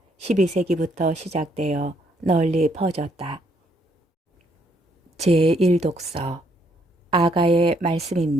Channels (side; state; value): both; normal; correlation 0.70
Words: 12세기부터 시작되어 널리 퍼졌다. 제1독서 아가의